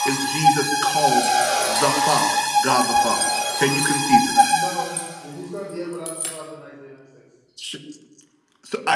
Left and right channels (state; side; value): identical; both; correlation 1.00